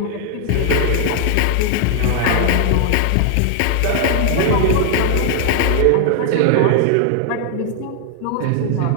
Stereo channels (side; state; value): both; different; correlation 0.00